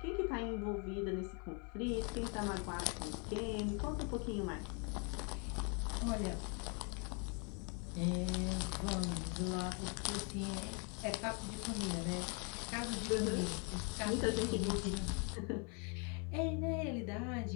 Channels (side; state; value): right; quieter; 36.7 dB